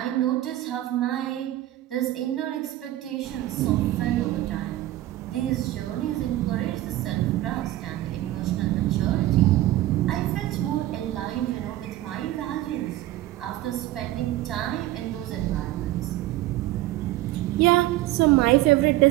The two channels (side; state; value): left; quieter; 15.5 dB